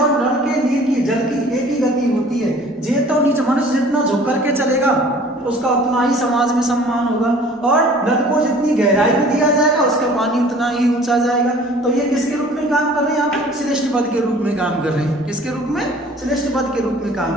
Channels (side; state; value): both; normal; correlation 0.50